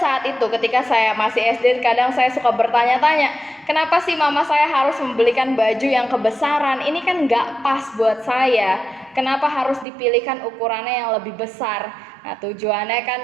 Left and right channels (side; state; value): left; drops out; at 9.9 s